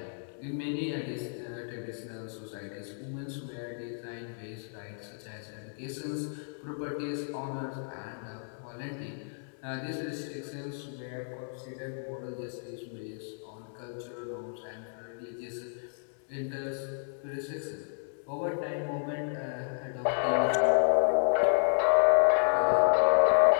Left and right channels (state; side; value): silent; right; digital silence